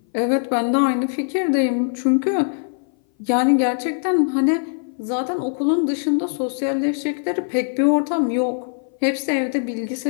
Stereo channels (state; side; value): silent; right; 59 dB below the other